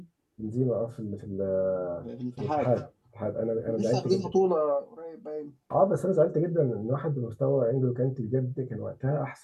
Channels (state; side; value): identical; both; correlation 1.00